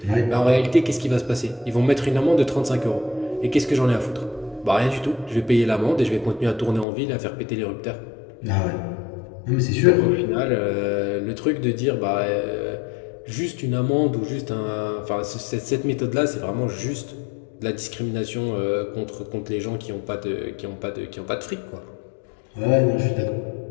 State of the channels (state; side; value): drops out; right; at 6.9 s